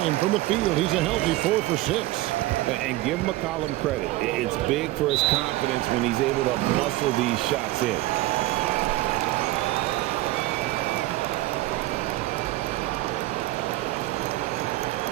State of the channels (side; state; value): left; quieter; 17.8 dB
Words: from the field. He's a healthy 4 for 6. And give McCollum credit. It's big for his confidence when he's able to muscle these shots in.